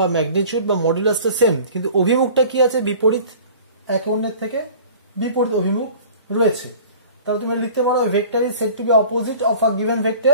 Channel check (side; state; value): both; inverted; correlation -0.45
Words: ম্যাগনিটিউড বা মডুলাসটা সেম, কিন্তু অভিমুখটা কি আছে? বিপরীত, একে অন্যের থেকে বিপরীত অভিমুখ রয়েছে। তাহলে তুমি লিখতে পারো vector is said to be opposite of a given